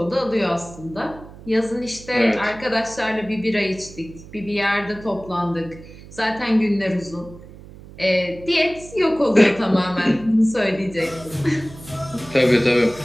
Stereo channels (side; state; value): right; noise; hum, 18 dB below the sound